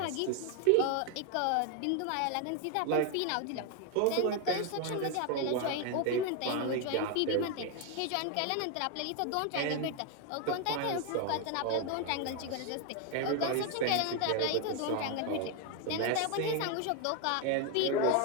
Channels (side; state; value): both; different; correlation 0.01